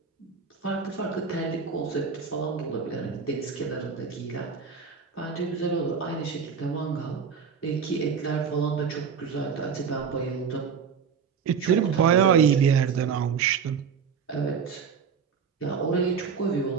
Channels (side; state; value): left; quieter; 6.4 dB